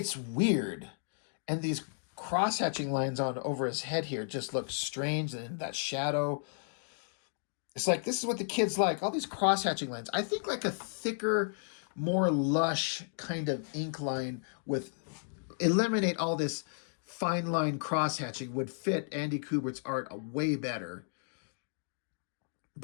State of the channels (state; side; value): silent; right; digital silence